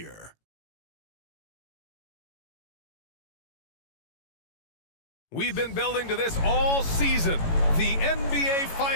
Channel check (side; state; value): right; late; 18 ms